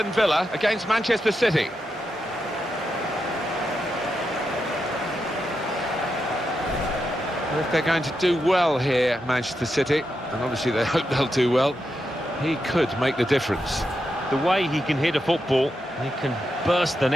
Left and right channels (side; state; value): both; normal; correlation 0.86